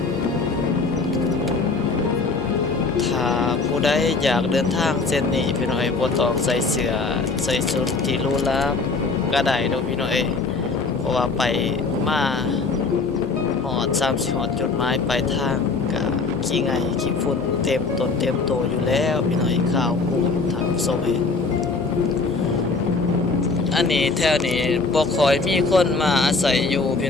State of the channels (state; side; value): quieter; right; 4.1 dB